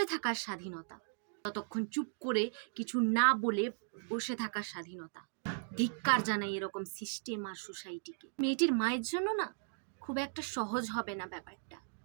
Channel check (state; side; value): silent; left; digital silence